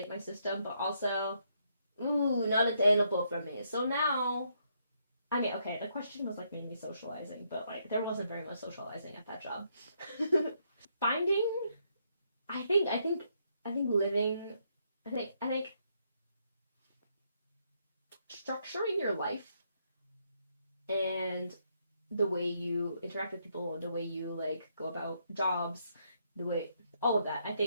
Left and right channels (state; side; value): inverted; both; correlation -0.74